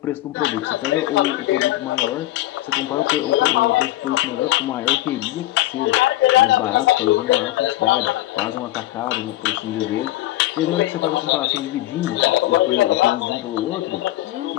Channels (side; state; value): right; quieter; 16.5 dB